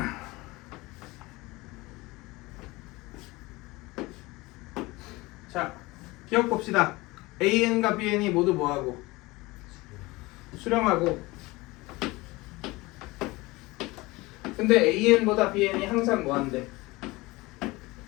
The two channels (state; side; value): quieter; right; 21.9 dB